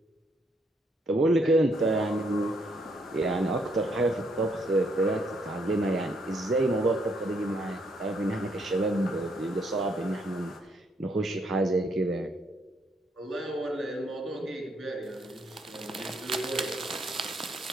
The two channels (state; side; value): normal; both; correlation 0.72